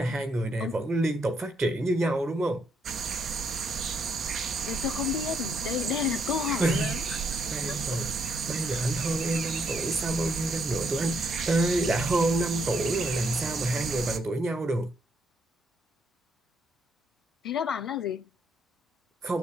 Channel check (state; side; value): normal; both; correlation 0.74